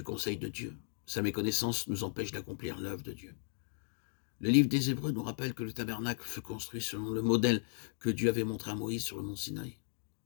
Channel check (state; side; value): silent; right; 54 dB below the other